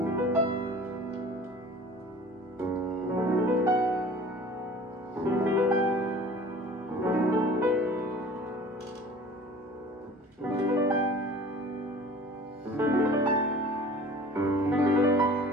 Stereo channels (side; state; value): both; normal; correlation 0.45